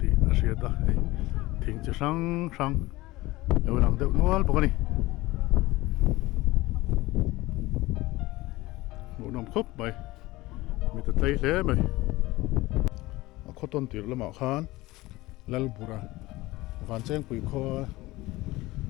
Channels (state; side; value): quieter; right; 19.4 dB